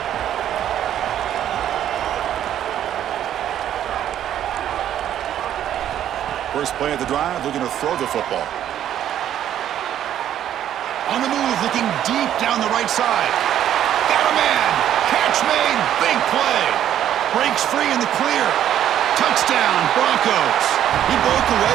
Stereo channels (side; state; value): left; quieter; 10.9 dB